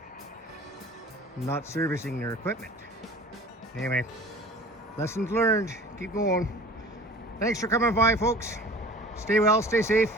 not servicing their equipment. Anyway, lessons learned. Keep going. Thanks for coming by, folks. Stay well, stay safe.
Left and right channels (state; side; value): normal; both; correlation 0.44